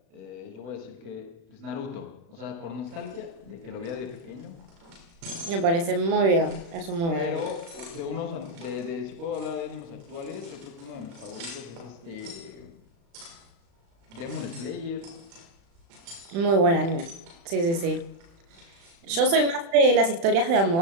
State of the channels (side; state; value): left; late; 36 ms